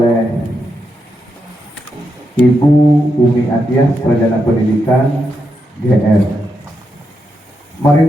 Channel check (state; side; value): normal; both; correlation 0.84